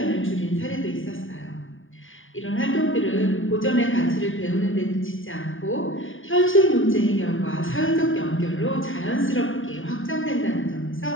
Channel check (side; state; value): right; late; 0.58 ms